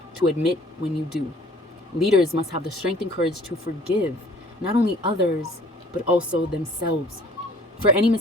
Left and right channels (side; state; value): both; normal; correlation 0.54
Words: to admit when you do. Leaders must have the strength and courage to forgive not only others, but also themselves for any